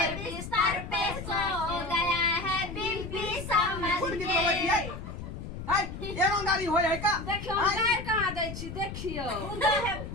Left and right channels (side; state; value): left; noise; rumble, 8 dB below the sound